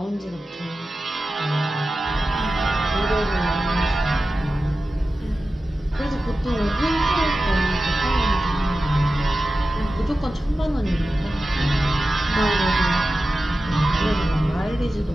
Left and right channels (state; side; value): normal; both; correlation 0.94